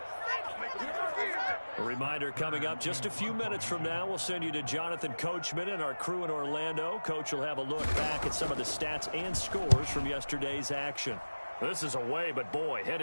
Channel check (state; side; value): inverted; both; correlation -1.00